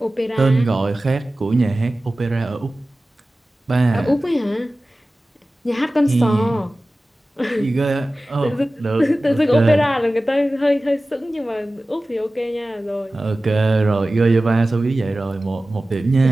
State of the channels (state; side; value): normal; both; correlation 0.96